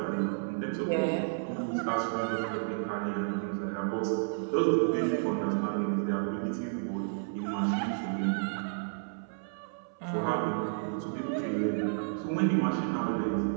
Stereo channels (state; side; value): silent; left; 57 dB below the other